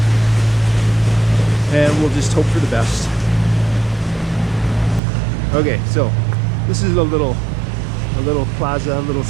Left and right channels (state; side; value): drops out; left; at 5.0 s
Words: and we'll just hope for the best. Okay, so this is a little plaza, a little